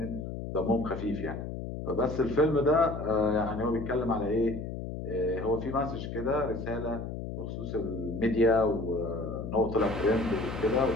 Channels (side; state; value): left; noise; hum, 6 dB below the sound